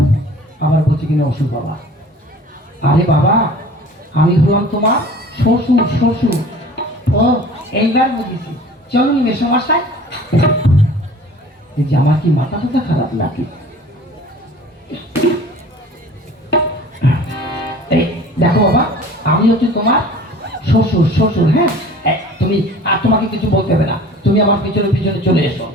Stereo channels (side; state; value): both; normal; correlation 0.45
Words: আবার বলছি কিনা অসুর বাবা। আরে বাবা, আমি হলাম তোমার শ্বশুর। শ্বশুর, ও এইবার বুঝেছি। চলুন মেসমশাই। এই যে আমার কি মাথা টাথা খারাপ লাগে। এই দেখো বাবা, আমি হচ্ছে তোমার শ্বশুর। শ্বশুর, হ্যাঁ। তুমি আর তোমাকে কিছু বলতে হবে না, তুমি আমার পিছনে পিছনে চলে এসো।